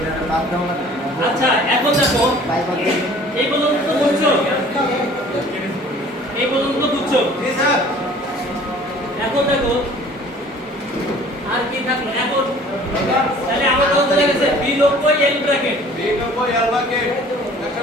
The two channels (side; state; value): both; normal; correlation 0.50